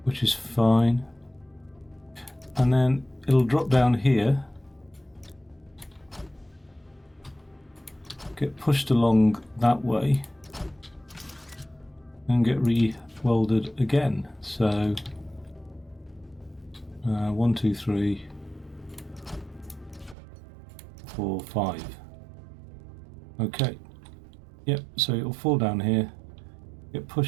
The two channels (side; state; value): left; drops out; at 20.2 s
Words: which is fine, and then it'll drop down here, get pushed along that way, and get re-welded again. So 1, 2, 3, 4, 5. Okay. Yep, so it'll fall down here, get